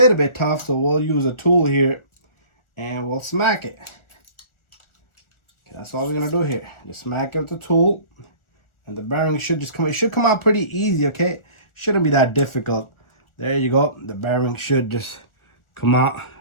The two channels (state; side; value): late; right; 1.4 ms